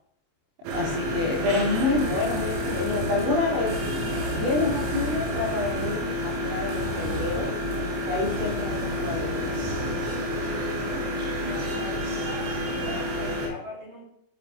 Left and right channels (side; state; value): left; late; 26 ms